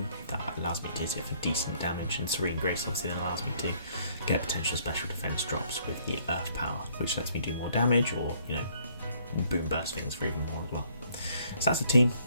That allows me to hit for decent damage, and Serene Grace obviously then allows me to get potential special defense drops with the Earth power, which lets me do more damage, or you know, and boom burst things for even more as well. So that's the team.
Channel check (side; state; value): both; inverted; correlation -0.63